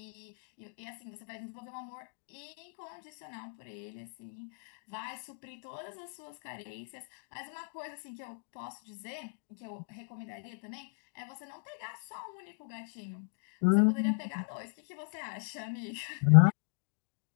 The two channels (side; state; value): right; silent; digital silence